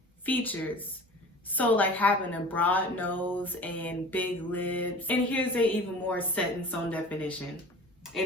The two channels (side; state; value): both; normal; correlation 0.40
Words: features. So like having a broad nose and big lips. And here's a even more set in stone definition.